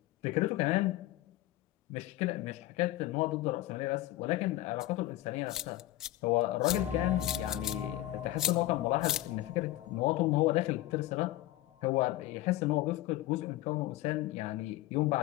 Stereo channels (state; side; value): quieter; right; 15.9 dB